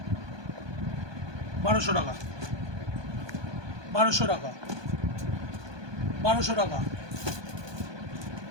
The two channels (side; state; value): left; late; 1.2 ms